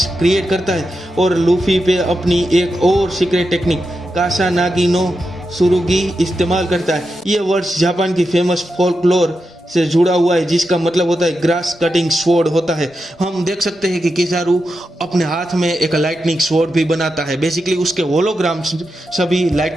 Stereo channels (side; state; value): both; normal; correlation 0.88